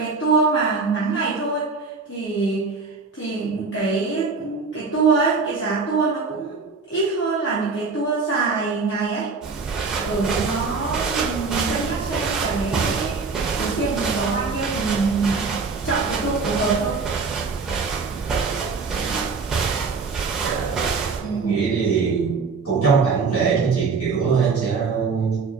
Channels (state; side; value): quieter; left; 4.6 dB